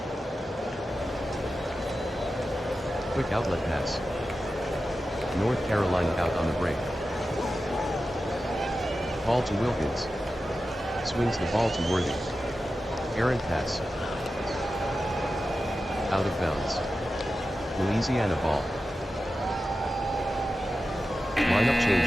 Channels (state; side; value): normal; both; correlation 0.92